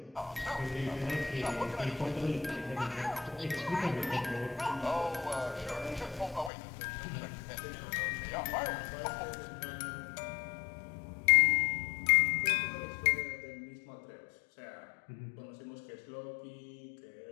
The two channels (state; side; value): drops out; right; at 6.5 s